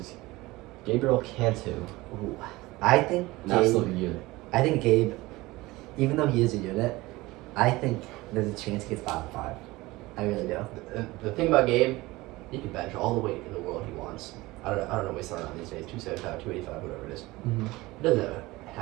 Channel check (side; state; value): left; quieter; 20.3 dB